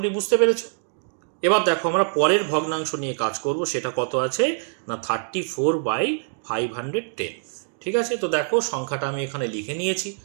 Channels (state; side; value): silent; left; digital silence